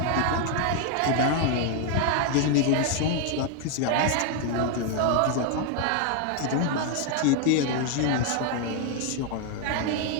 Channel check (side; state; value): both; different; correlation 0.00